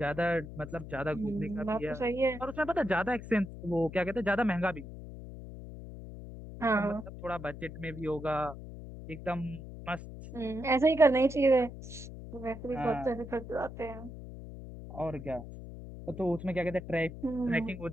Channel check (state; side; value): noise; left; hum, 12 dB below the sound